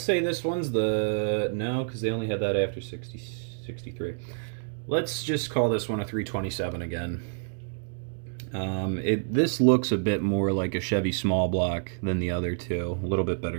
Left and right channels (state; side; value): silent; left; digital silence